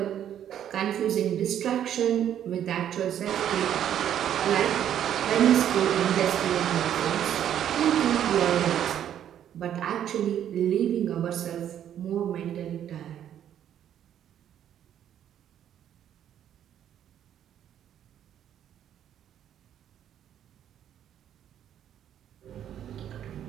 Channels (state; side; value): quieter; left; 10.2 dB